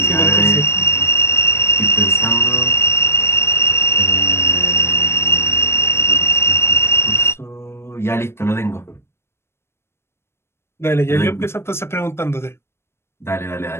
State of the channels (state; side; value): late; right; 0.12 ms